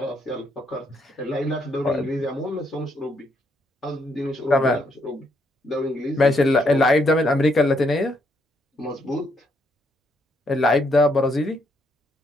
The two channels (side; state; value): both; normal; correlation 0.74